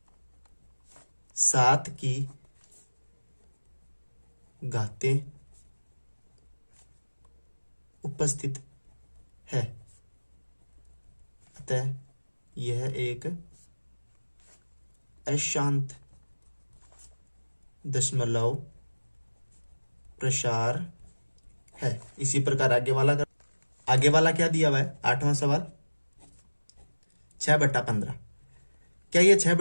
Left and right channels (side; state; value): both; inverted; correlation -1.00